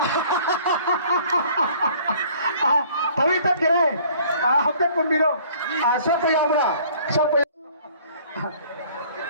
तवी तक करे हफ्ते पुंबिरो सब यावरा सब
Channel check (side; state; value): both; inverted; correlation -0.54